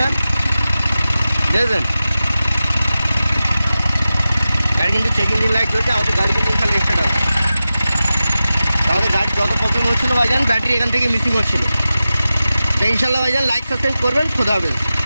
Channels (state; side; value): inverted; both; correlation -0.94